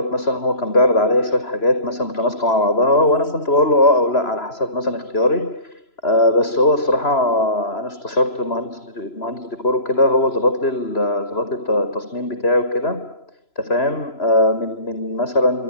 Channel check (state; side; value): late; right; 3.0 ms